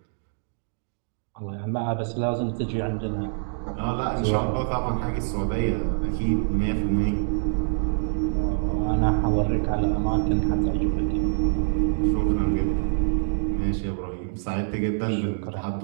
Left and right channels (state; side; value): silent; left; digital silence